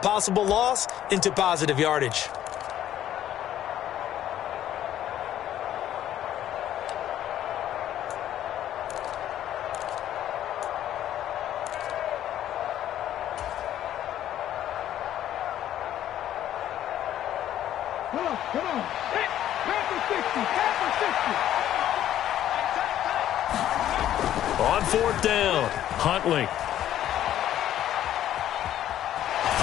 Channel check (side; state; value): right; quieter; 11.8 dB